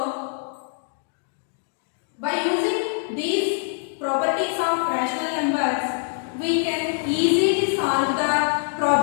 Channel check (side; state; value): right; silent; 56 dB below the other